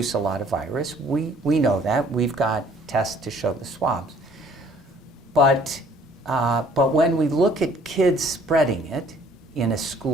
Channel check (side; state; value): both; normal; correlation 0.58